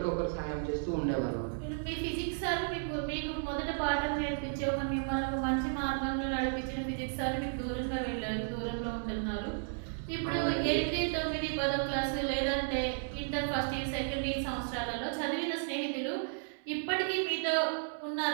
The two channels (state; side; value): silent; left; digital silence